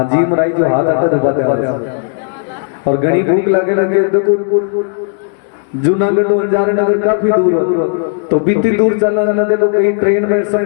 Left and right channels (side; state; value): right; silent; 66 dB below the other